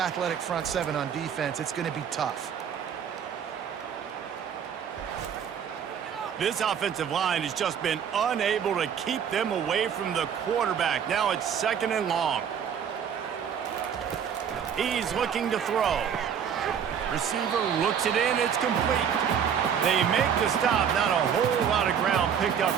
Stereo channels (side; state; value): left; quieter; 8.0 dB